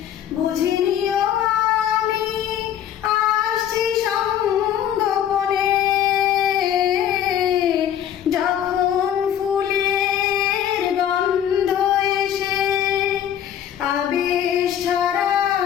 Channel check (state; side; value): quieter; right; 10.2 dB